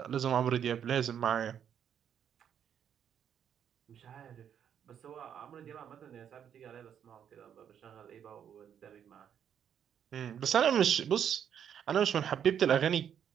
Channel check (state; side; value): quieter; left; 8.8 dB